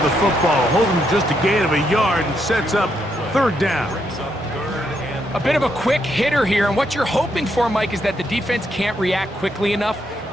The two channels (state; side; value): normal; both; correlation 0.78